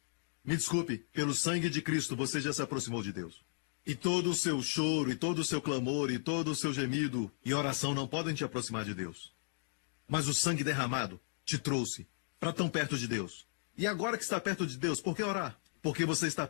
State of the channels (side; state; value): right; silent; digital silence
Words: Me desculpe, pelo sangue de Cristo você já se aproximou de Deus. E todo o seu choro, e todo o seu clamor, e todo o seu gemido e oração não podem te aproximar de Deus. Mas o sangue derramado te trouxe para tão perto de Deus. E agora que está perto de Deus, por que orar? Porque você está